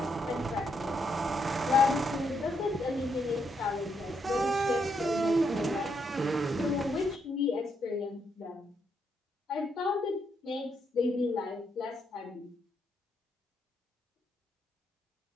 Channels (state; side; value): normal; both; correlation 0.78